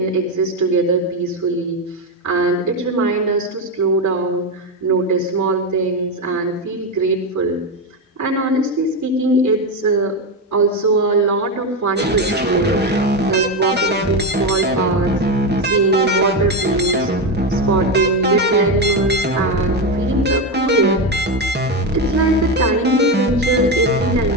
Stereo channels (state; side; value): normal; both; correlation 0.12